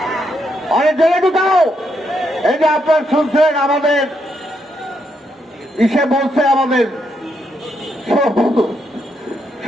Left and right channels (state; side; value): normal; both; correlation 0.79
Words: অনেক জেলে ঢুকাও। এই যে আপনার শুনছেন আমাদের ইসে বলছে, আমাদের